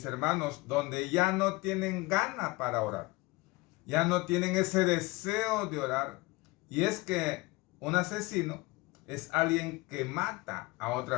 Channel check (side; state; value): right; quieter; 22.5 dB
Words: hermanos, donde ya no tienen gana para orar. Ya no tienen ese deseo de orar. Y es que un asesino es alguien que mata a